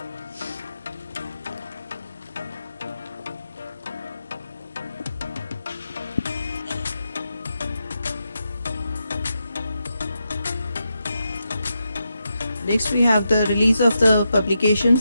Next, we have the release of the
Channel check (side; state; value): both; inverted; correlation -0.86